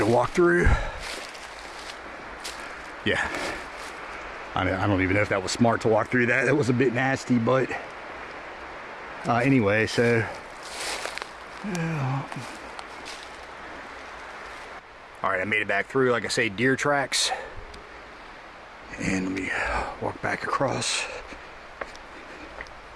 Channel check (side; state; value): both; identical; correlation 1.00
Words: walk through. Yeah, I don't even know if that was smart to walk through that. That was a bit nasty, but anyway, so all right, I made it back through, like I say, deer tracks. And let me walk back across.